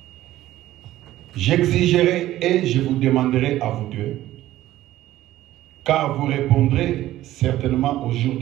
J'exigerai et je vous demanderai à vous deux, car vous répondrez certainement au jour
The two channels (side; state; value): left; quieter; 14.6 dB